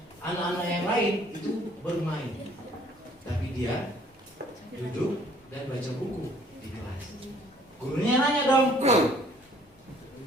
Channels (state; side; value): normal; both; correlation 0.59